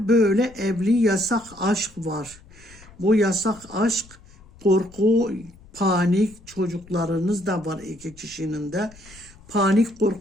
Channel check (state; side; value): noise; left; rumble, 24 dB below the sound